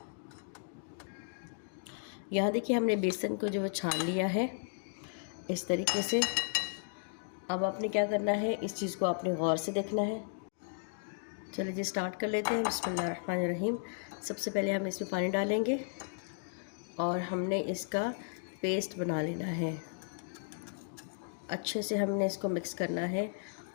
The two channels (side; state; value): right; silent; digital silence